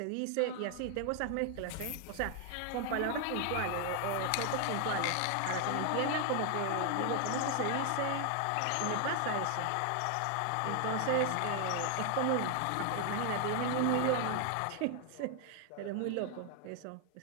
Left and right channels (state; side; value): different; both; correlation 0.00